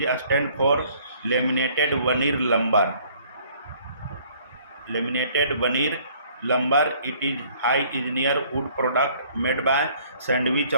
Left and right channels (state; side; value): inverted; both; correlation -0.58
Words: a stand for laminated veneer lumber. Laminated veneer lumber, it is high engineer wood product made by sandwich